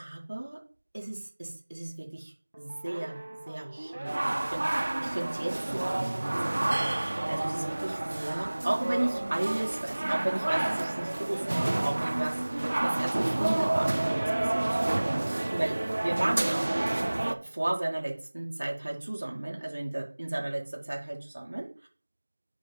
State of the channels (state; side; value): inverted; both; correlation -1.00